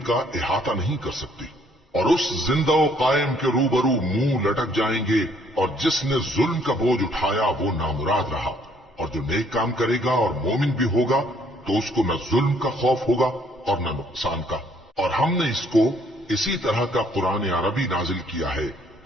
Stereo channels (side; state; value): both; normal; correlation 0.64